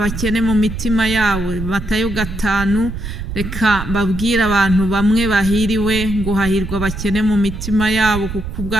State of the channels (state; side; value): noise; right; rumble, 7 dB below the sound